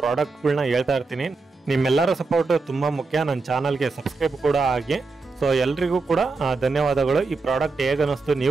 ಪ್ರಾಡಕ್ಟ್ಗಳನ್ನ ಹೇಳ್ತಾ ಇರ್ತೀನಿ. ನಿಮ್ಮೆಲ್ಲರ ಸಪೋರ್ಟ್ ತುಂಬ ಮುಖ್ಯ. ನನ್ನ ಚಾನಲ್ಗೆ ಸಬ್ಸ್ಕ್ರೈಬ್ ಕೂಡ ಆಗಿ. ಸೊ ಎಲ್ರಿಗೂ ಕೂಡ ಧನ್ಯವಾದಗಳು. ಈ ಪ್ರಾಡಕ್ಟ್ ಹೇಗೆ ಅನ್ನಿಸ್ತು,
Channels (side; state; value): left; quieter; 4.0 dB